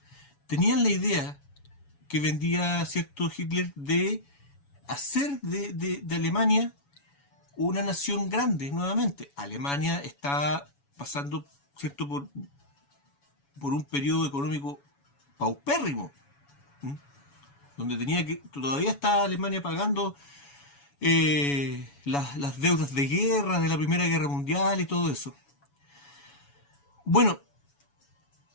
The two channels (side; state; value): right; late; 7.1 ms